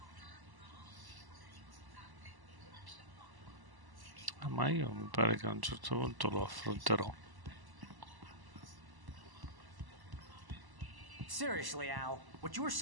Ma io mi pare che a un certo punto lo affronterò. Seriously, Al, what you were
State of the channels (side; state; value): left; late; 1.0 ms